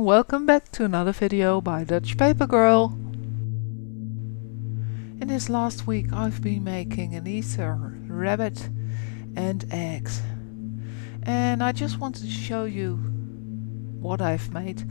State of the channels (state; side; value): silent; right; 61 dB below the other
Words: welcome back to another video by dutchpapergirl. In this last week I've been making an Easter rabbit and eggs. And I just wanted to show you what I've made.